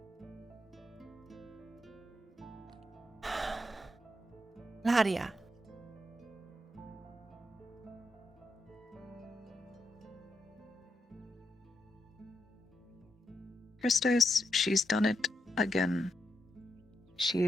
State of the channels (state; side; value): normal; both; correlation 0.83